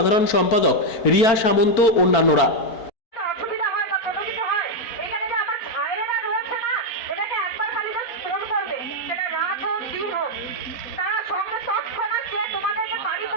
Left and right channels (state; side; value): late; right; 4.4 ms